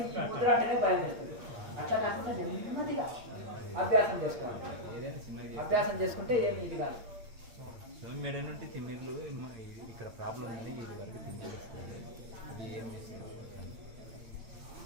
ముద్ర అంటేనే భయం చేస్తుంది. అట్లా కాకుండా నెమ్మదిగా అభ్యాసం చేసుకోవాలి. అభ్యాసం చేసుకుంటే ఏమి ఇది కాదు. మెడ నుండి తిమ్మిర్లు ఇక్కడ ప్రాబ్లం ఉంది, ఇది వరకు తిమ్మిర్లు వస్తుంది. అది ఏం చేసేది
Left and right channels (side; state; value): left; late; 8.7 ms